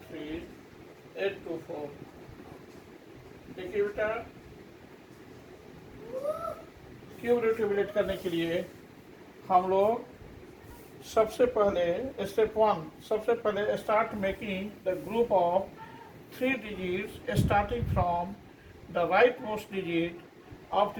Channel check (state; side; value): identical; both; correlation 1.00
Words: 3 8 2 4। देखिए बेटा, क्यूब रूट कैलकुलेट करने के लिए हम लोग सबसे पहले स्टेप 1, सबसे पहले start making the group of 3 digits starting from the rightmost digit of